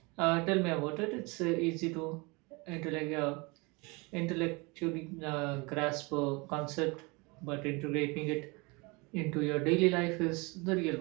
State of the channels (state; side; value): quieter; left; 27.4 dB